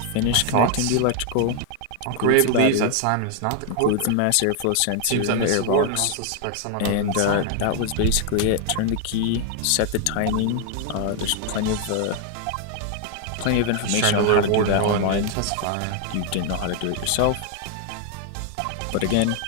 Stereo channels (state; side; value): different; both; correlation 0.00